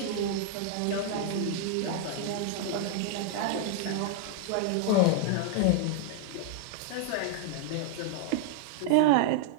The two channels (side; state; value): both; different; correlation -0.01